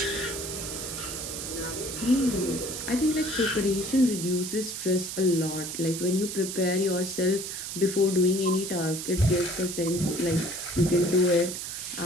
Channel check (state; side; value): noise; right; hiss, 6 dB below the sound